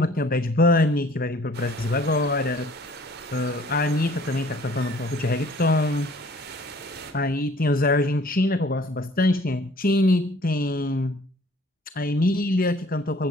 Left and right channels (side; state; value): both; normal; correlation 0.54